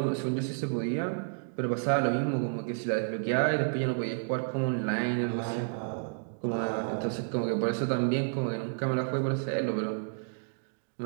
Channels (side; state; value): left; silent; digital silence